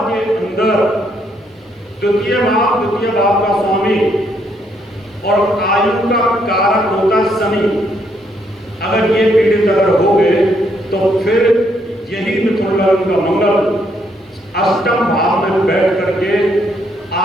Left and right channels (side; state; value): both; normal; correlation 0.72